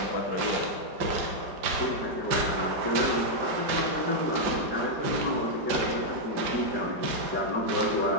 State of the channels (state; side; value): late; left; 5.0 ms